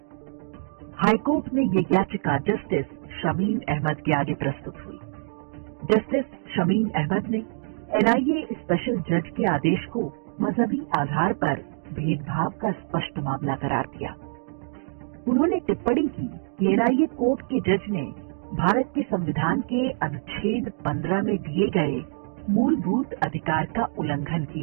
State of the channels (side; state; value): left; silent; digital silence